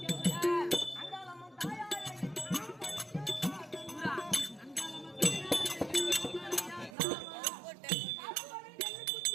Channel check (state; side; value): drops out; left; at 7.0 s